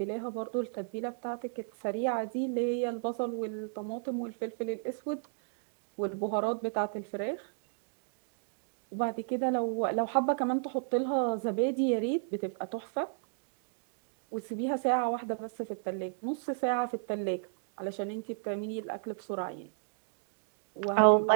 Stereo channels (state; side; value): silent; left; digital silence